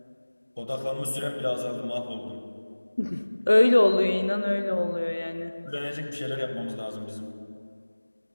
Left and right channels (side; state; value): both; inverted; correlation -1.00